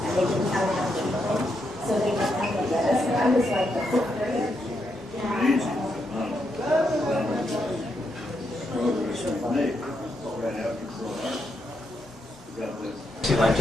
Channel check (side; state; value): both; normal; correlation 0.81